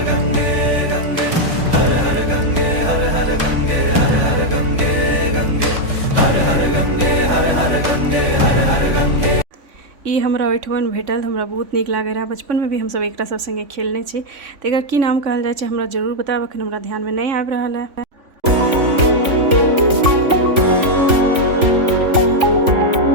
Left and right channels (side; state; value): left; late; 3.5 ms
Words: ई हमरा ओहिठमन भेटल, हमरा बहुत नीक लागे रहा। बचपन में भी हम सब एकरा सब संगे खेलने छी। तो एकर की नाम कहल जाय छै हमरा जरूर बताब, अखन हमरा ध्यान में नहीं आबि रहल है।